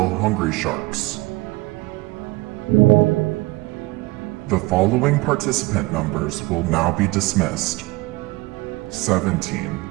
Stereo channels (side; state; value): left; quieter; 22.2 dB